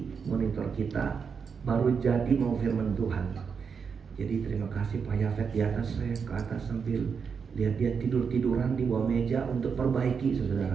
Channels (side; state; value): left; quieter; 6.1 dB